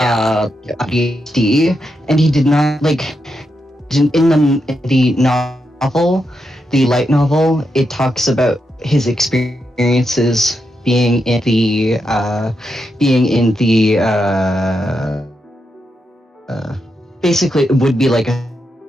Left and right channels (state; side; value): normal; both; correlation 0.85